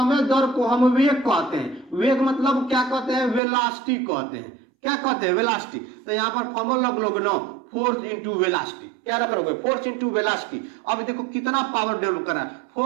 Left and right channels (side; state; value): left; drops out; at 3.4 s